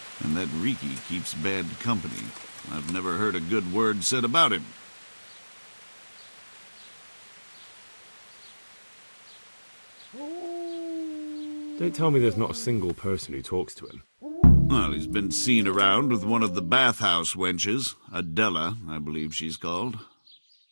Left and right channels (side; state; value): both; inverted; correlation -1.00